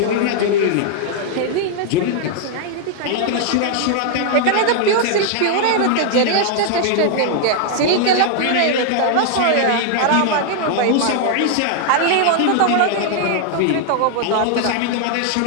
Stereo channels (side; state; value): both; different; correlation 0.00